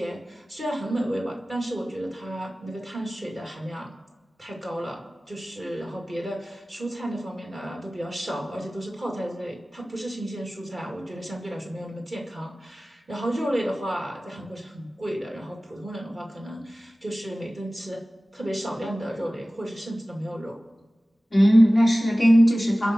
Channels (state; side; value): normal; both; correlation 0.97